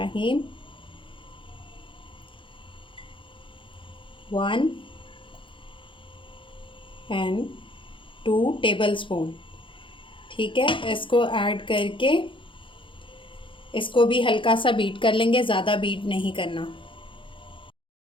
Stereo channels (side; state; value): right; late; 0.25 ms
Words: 1 एंड 2 टेबलस्पून, ठीक है। इसको ऐड करके इसको भी हल्का सा बीट कर लेंगे, ज़्यादा बीट नहीं करना।